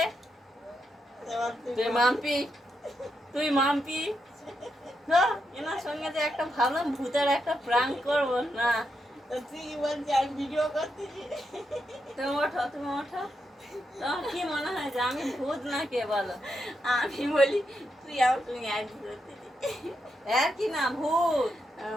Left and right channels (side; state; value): both; normal; correlation 0.83